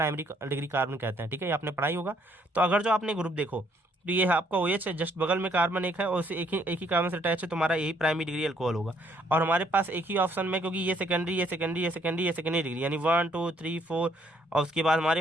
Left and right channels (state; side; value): normal; both; correlation 0.67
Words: डिग्री कार्बन कहते हैं, ठीक है, ये आपने पढ़ाई होगा। तो अगर जो आपने ग्रुप देखो तो ये आपका OH है, जस्ट बगल में कार्बन एक है और उसे एक ही कार्बन से अटैच है, तो हमारा यही प्राइमरी डिग्री अल्कोहल होगा। और हमारे पास एक ही ऑप्शन में, क्योंकि ये सेकेंडरी, ये सेकेंडरी, ये सेकेंडरी, ये सेकेंडरी डिग्री, यानी 1 2 3 4, और उसके बाद हमारे